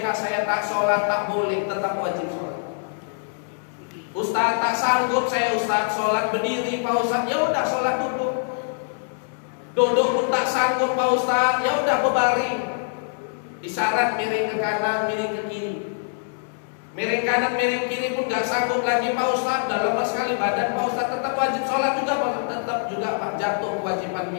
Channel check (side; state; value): right; silent; digital silence